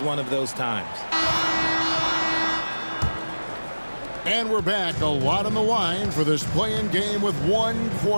one of those times. And we're back. A lot on the line for this play-in game with 1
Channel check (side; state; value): both; inverted; correlation -1.00